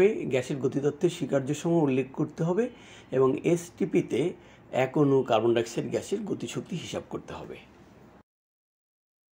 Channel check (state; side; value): identical; both; correlation 1.00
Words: গ্যাসের গতিতত্ত্বের স্বীকার্যসমূহ উল্লেখ করতে হবে এবং এসটিপিতে 1 অণু কার্বন ডাইঅক্সাইড গ্যাসের গতিশক্তি হিসাব করতে হবে।